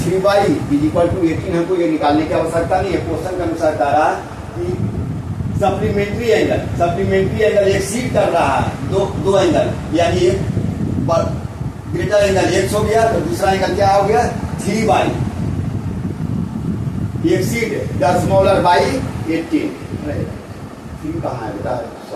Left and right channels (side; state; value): both; identical; correlation 1.00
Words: 3y is equal to 18, हमको ये निकालने की आवश्यकता नहीं है। क्वेश्चन के अनुसार कह रहा है कि सप्लीमेंट्री एंगल एक्सीड कर रहा है दो एंगल, यानी एक ग्रेटर एंगल x हो गया, तो दूसरा एंगल क्या हो गया 3y exceed the smaller by 18। 3 कहाँ है बेटा,